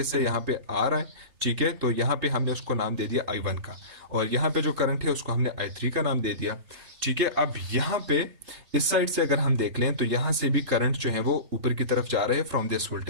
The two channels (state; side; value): late; left; 3.3 ms